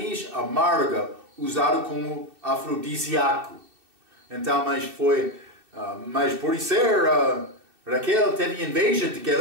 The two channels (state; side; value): late; left; 2.6 ms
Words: amarga usada como afrodisíaco. Então, mas por ser Raquel teve inveja de que